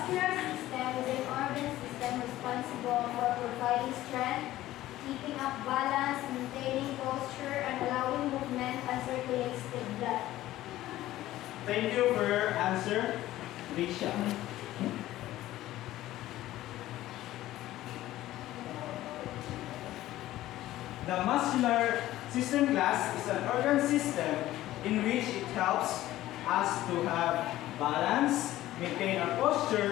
system is an organ system responsible for providing strength, keeping up balance, maintaining posture, and allowing movement and circulates the blood. Thank you for your answer, Risha. The muscular system class is an organ system in which it helps us to have balance, maintain our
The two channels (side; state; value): right; quieter; 15.1 dB